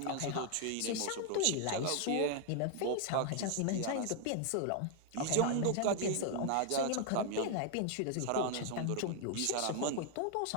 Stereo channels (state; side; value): different; both; correlation 0.00